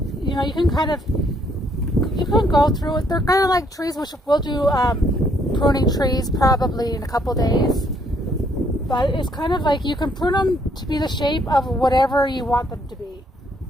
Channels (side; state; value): both; normal; correlation 0.68